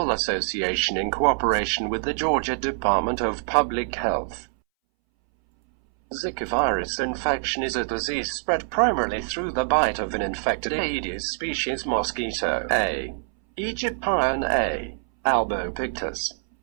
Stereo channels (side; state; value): left; silent; 62 dB below the other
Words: Association in cooperation with the Georgia Department of Public Health. Zika virus infection is a disease spread primarily through the bite of an infected Aedes species mosquito, A. aegyptian A. albopictus.